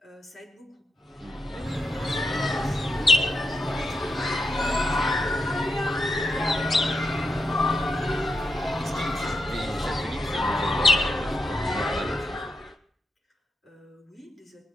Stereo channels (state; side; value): normal; both; correlation 0.82